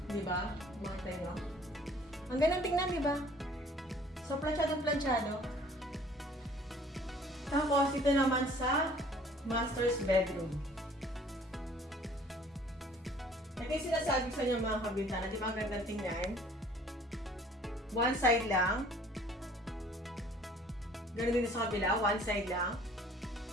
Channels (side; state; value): both; normal; correlation 0.54